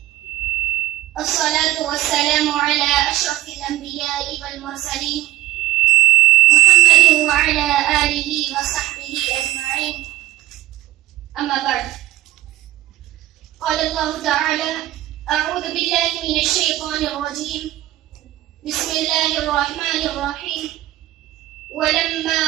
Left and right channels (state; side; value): quieter; left; 15.9 dB